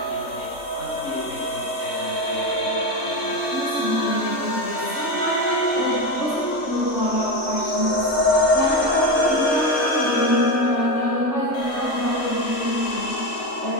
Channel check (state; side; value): late; right; 3.4 ms